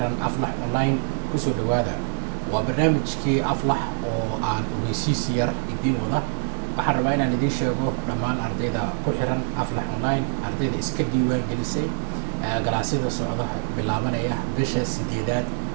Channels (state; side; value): silent; left; digital silence